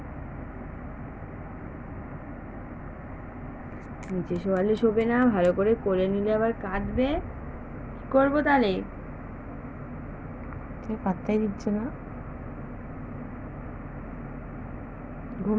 নিচে শোয়ালে শোবে না, ভালো করে কোলে নিলে আবার কাঁদবে। কি করবো তাহলে? পাত্তাই দিচ্ছে না।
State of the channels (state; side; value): identical; both; correlation 1.00